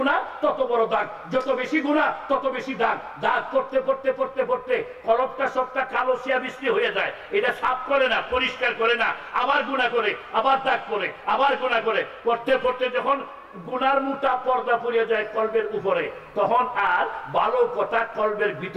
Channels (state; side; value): identical; both; correlation 1.00